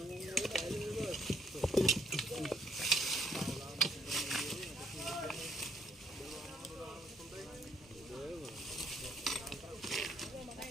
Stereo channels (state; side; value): normal; both; correlation 0.69